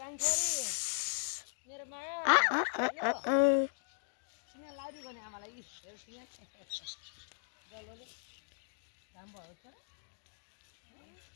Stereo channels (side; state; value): right; silent; digital silence